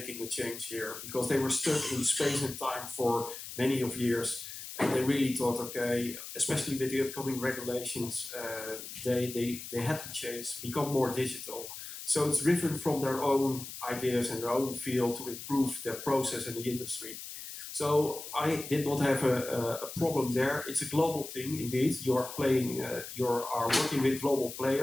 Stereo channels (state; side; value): noise; left; hiss, 10 dB below the sound